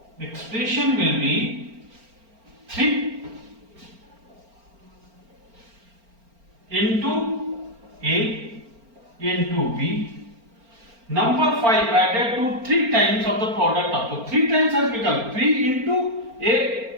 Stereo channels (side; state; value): left; late; 4.4 ms